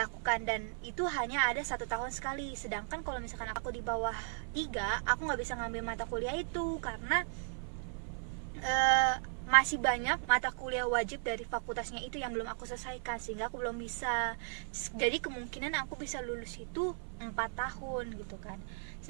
dan itu hanya ada 1 tahun sekali. Sedangkan kalau misalkan aku di bawah 3, aku nggak bisa ngambil mata kuliah itu karena masih banyak mata kuliah wajib dari fakultasnya itu yang belum aku selesaikan, sehingga aku belum bisa. Jadi kemungkinan aku bisa lulus itu 4 tahun gitu kan.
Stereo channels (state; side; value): silent; left; 54 dB below the other